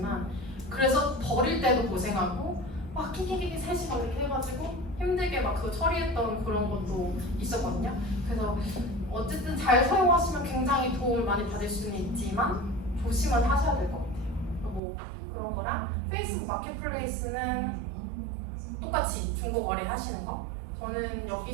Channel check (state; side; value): drops out; left; at 14.8 s